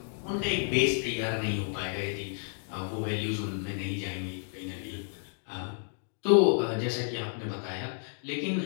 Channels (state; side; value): silent; right; digital silence